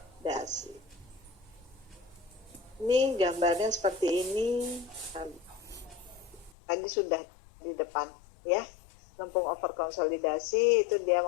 Ini gambarnya seperti ini. Tadi sudah di depan, ya, lempung over konsolidasi itu dia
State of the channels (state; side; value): drops out; right; at 6.5 s